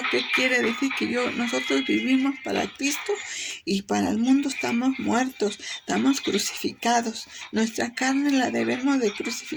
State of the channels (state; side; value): identical; both; correlation 1.00